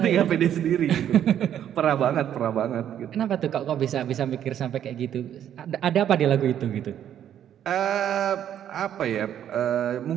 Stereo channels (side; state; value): left; quieter; 10.2 dB